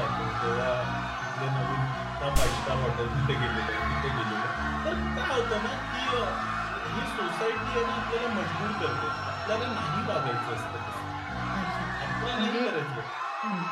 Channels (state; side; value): identical; both; correlation 1.00